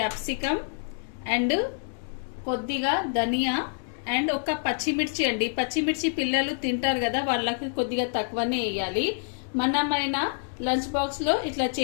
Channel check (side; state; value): right; silent; digital silence